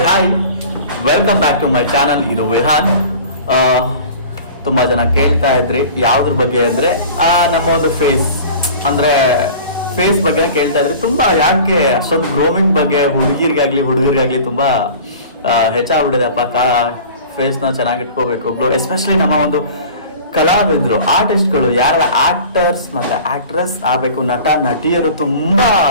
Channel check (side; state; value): both; inverted; correlation -0.41